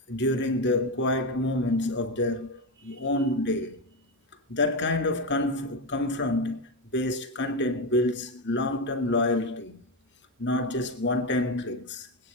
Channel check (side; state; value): both; normal; correlation 0.12